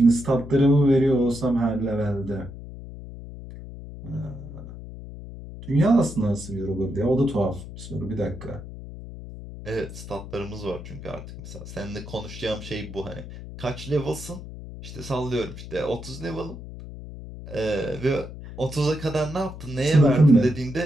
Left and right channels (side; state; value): left; noise; hum, 12 dB below the sound